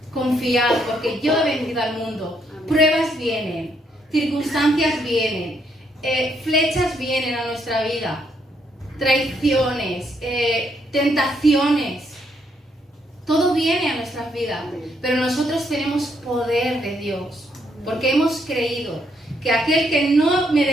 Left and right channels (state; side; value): normal; both; correlation 0.74